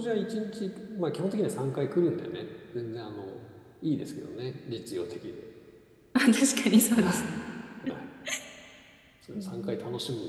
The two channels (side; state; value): both; identical; correlation 1.00